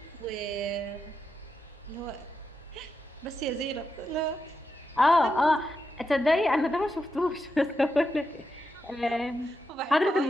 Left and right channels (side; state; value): both; normal; correlation 0.86